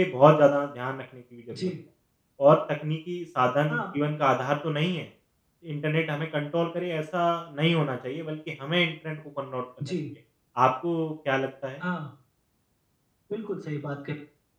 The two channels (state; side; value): identical; both; correlation 1.00